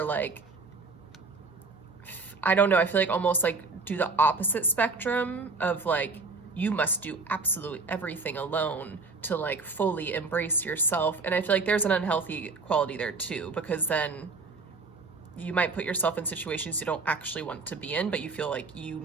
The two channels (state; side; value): quieter; left; 4.0 dB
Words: like, I don't know, I feel like almost like do the opposite spectrum of like, you must do absolutely everything alone to like fully embrace yourself. And I feel like there's an unhealthy quality there too, because then you might put yourself in situations you don't actually want to be in, but you feel like you